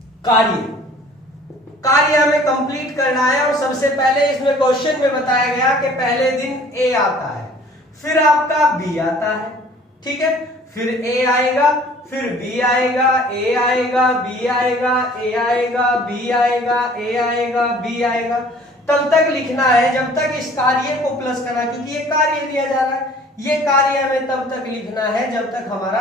कार्य हमें कंप्लीट करना है, और सबसे पहले इसमें क्वेश्चन में बताया गया कि पहले दिन ए आता है, फिर आपका बी आता है, ठीक है, फिर ए आएगा, फिर बी आएगा, ए आएगा, बी आएगा, ए आएगा, बी आएगा, ए आएगा, बी आएगा। तब तक लिखना है जब तक इस कार्य को प्लस करना है, क्योंकि ये कार्य दिया जा रहा है, ये कार्य हमें तब तक लिखना है जब तक हमारा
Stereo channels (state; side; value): normal; both; correlation 0.52